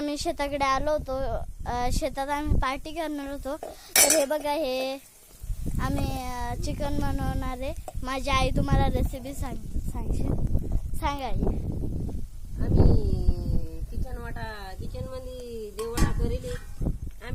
शेताकडे आलो होतो. शेतात आम्ही पार्टी करणार होतो. तर हे बघा, हे आम्ही चिकन बनवणार आहे. माझी आई तुम्हाला रेसिपी सांगा. आम्ही किचन मध्ये देवडा करेल.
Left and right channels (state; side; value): identical; both; correlation 1.00